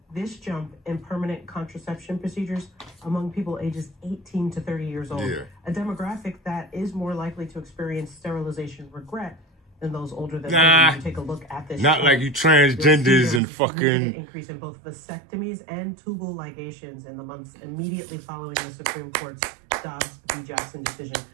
this jump in permanent contraception procedures among people ages 18 to 30 years old, a demographic that is more likely to experience sterilization regret than those older than 30. You take a look at this. Not like you transgenders and fucking increase in both vasectomies and tubal ligations in the months immediately following the Supreme Court's Dobbs v. Jackson decision.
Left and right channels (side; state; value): left; drops out; at 13.4 s